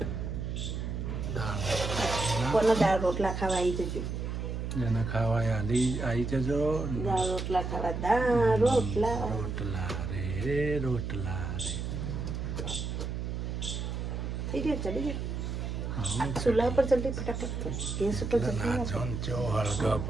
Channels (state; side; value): noise; right; hum, 4 dB below the sound